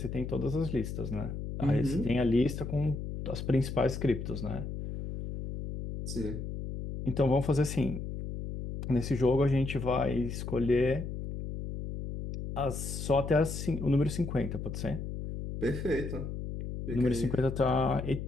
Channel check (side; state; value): left; noise; hum, 6 dB below the sound